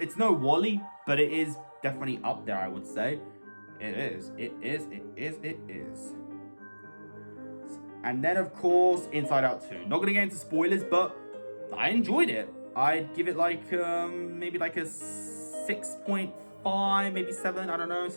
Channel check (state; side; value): inverted; both; correlation -1.00